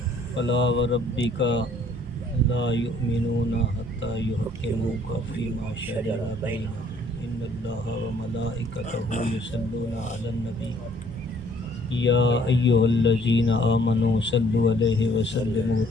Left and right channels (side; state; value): both; normal; correlation 0.61